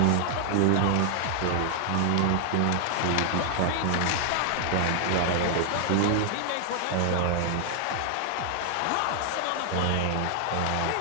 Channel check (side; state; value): both; different; correlation 0.00